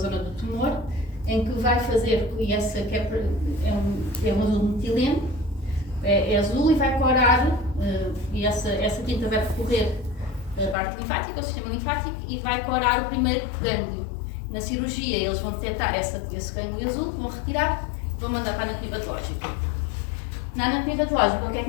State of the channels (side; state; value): right; drops out; at 10.8 s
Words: do tumor, em que vai fazer, e essa que é um azul metileno, é azul e vai corar, e essa tinta vai percorrer a parte linfática, o sistema linfático, e vai corar o primeiro gânglio. Na cirurgia eles vão detectar esse gânglio azul, vão retirar e vão mandar para a anatomia patológica. Na anatomia patológica, o que é